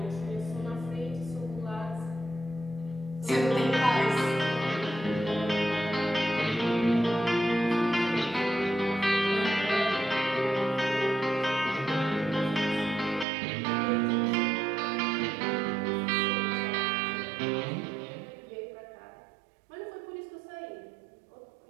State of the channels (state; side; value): drops out; left; at 13.2 s